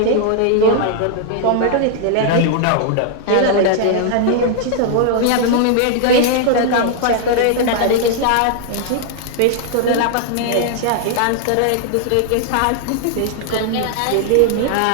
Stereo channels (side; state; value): both; different; correlation 0.00